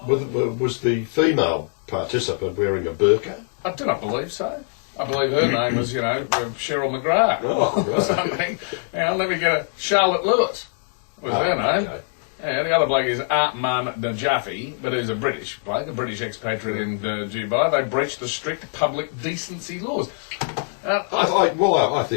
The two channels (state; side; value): silent; right; 64 dB below the other